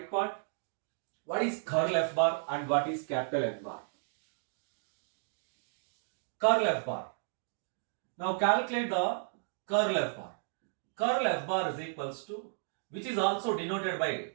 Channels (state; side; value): silent; left; digital silence